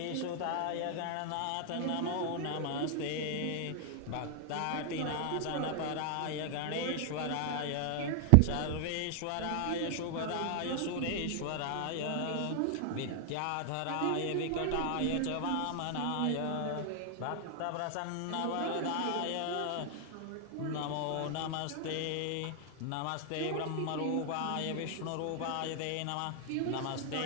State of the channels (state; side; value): different; both; correlation 0.00